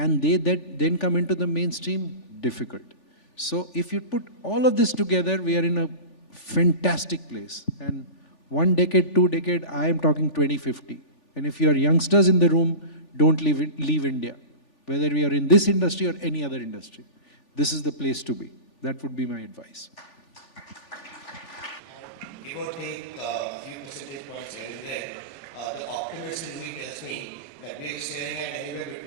they then come into the mainstream? Difficult. So if you put all of this together, we are in a fantastic place. And 1 decade, 2 decade, I am talking 2050. And if you are youngsters in the room, don't leave India. Whether we are in this industry or any other industry, this is the place to be. That would be my advice. Give or take a few percentage points here and there, the optimist in me tells me that we are staring at anywhere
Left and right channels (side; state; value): right; late; 3.4 ms